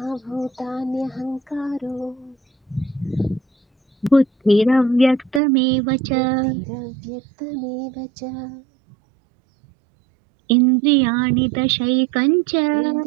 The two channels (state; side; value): drops out; left; at 5.4 s